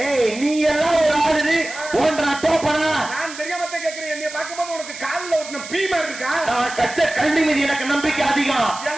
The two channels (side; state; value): right; noise; hiss, 13 dB below the sound